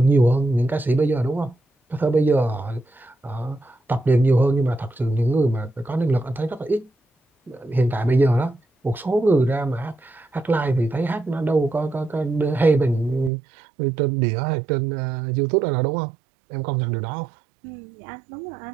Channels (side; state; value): left; drops out; at 13.3 s